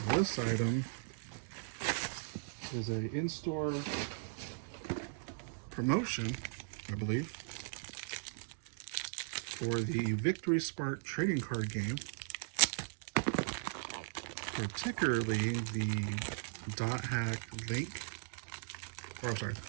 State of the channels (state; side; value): silent; left; digital silence